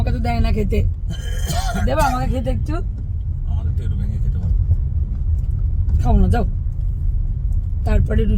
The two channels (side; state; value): both; identical; correlation 1.00